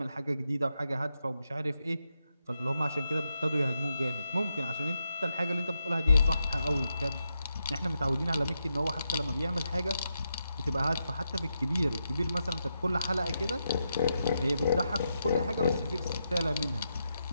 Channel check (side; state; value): both; inverted; correlation -0.84